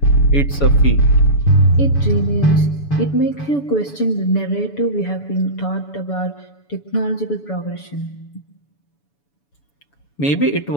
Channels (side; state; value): right; late; 7.0 ms